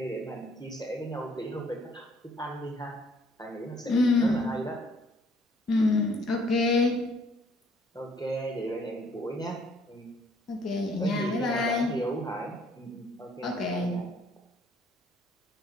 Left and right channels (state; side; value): normal; both; correlation 0.62